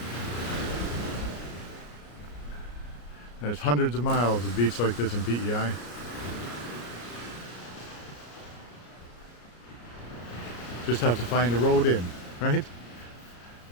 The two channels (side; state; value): right; late; 34 ms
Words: There's hundreds of miles of beach like this in PEI. Just have to find a road in, right?